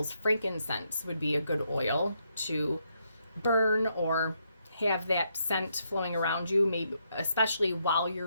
frankincense would be a good oil to burn or have that scent flowing around you, maybe especially while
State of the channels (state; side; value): inverted; both; correlation -0.77